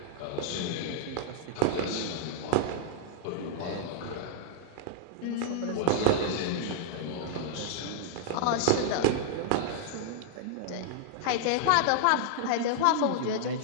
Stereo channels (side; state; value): both; different; correlation -0.01